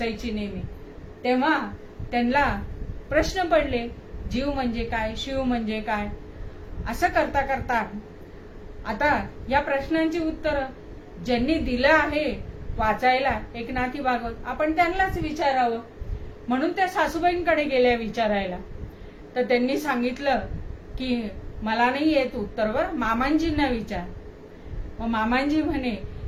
नेहमी, तेव्हा त्यांना प्रश्न पडले, जीव म्हणजे काय, शिव म्हणजे काय. असं करता करता आता या प्रश्नांची उत्तर ज्यांनी दिलं आहे वाचायला एकनाथी भागवत, आपण त्यांनाच विचारावं म्हणून त्या सासूबाईंकडे गेल्या विचारायला. तर त्यांनी सांगितलं की मला नाही येत उत्तर, वर मामांजींना विचार. मग मामांजी म्हणे,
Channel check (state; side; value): identical; both; correlation 1.00